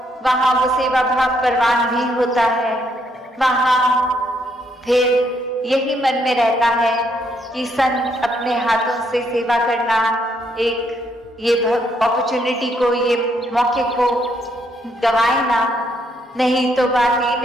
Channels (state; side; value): normal; both; correlation 0.73